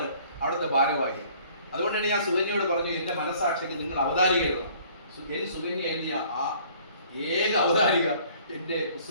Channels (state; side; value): inverted; both; correlation -0.55